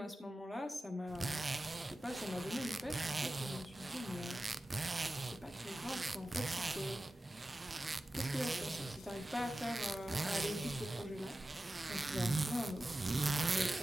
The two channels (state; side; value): normal; both; correlation 0.95